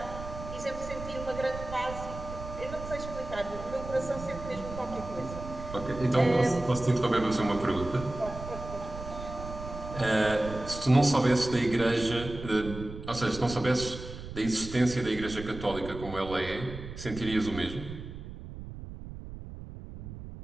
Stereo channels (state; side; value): noise; right; rumble, 11 dB below the sound